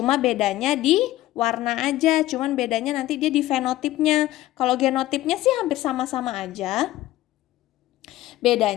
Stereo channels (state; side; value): quieter; right; 15.6 dB